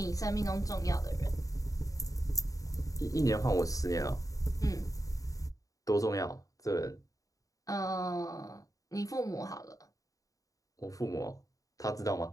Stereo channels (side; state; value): right; late; 0.17 ms